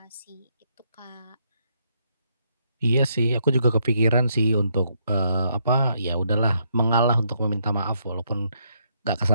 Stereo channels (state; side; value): inverted; both; correlation -0.75